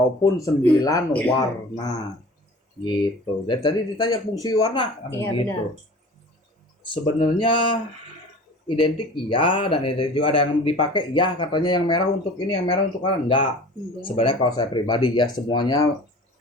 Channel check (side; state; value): both; normal; correlation 0.42